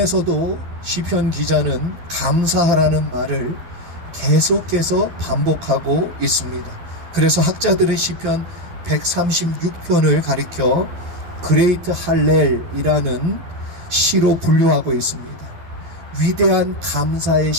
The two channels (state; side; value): late; left; 12 ms